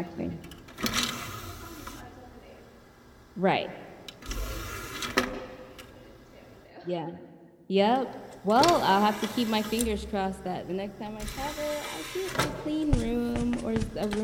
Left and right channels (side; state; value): both; identical; correlation 1.00